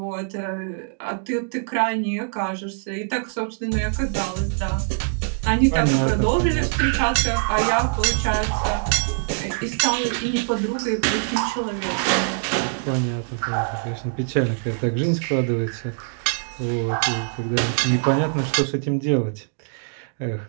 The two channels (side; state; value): left; silent; digital silence